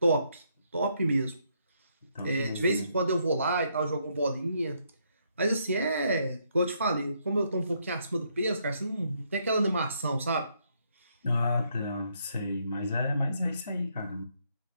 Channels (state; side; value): inverted; both; correlation -0.73